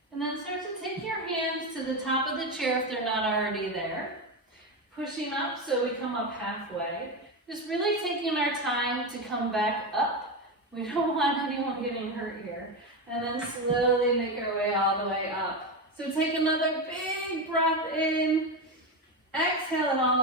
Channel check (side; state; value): both; normal; correlation 0.15